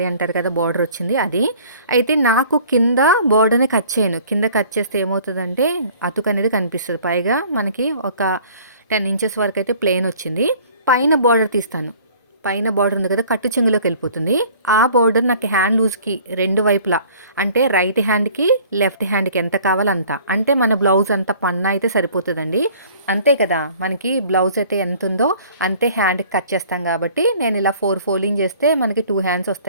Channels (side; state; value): both; inverted; correlation -0.51